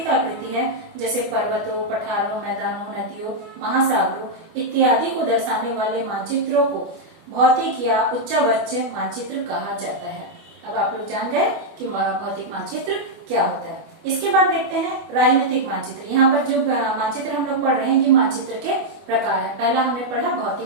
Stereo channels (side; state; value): left; late; 24 ms